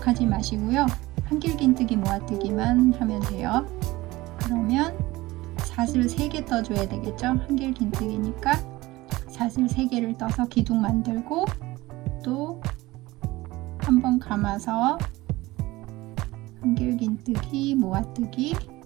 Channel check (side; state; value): left; quieter; 19.4 dB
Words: 마시고요. 한길긴뜨기 모아뜨기만 하면 돼요. 그러면 사슬 3개 떠줘야 되겠죠. 한길긴뜨기니까 사슬 3개를 떠서 기둥 만들고 또 한 번 감아서 한길긴뜨기 모아뜨기